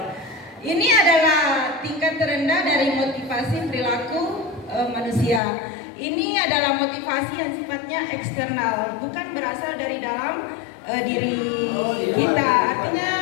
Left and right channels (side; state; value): right; drops out; at 5.4 s